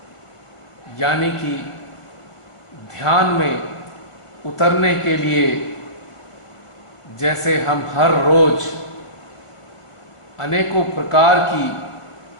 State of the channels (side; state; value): right; late; 1.5 ms